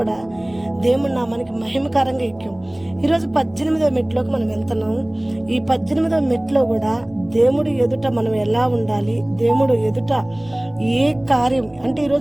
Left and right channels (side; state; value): right; noise; rumble, 28 dB below the sound